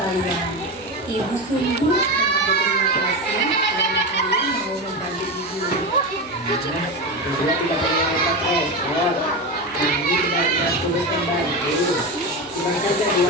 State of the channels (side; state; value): right; noise; hum, 27 dB below the sound